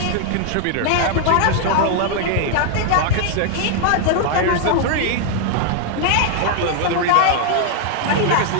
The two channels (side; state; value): both; different; correlation 0.00